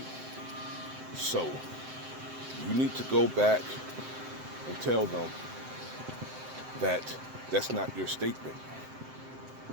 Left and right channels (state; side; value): late; left; 7.7 ms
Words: So you need to go back and tell them that that's not your statement,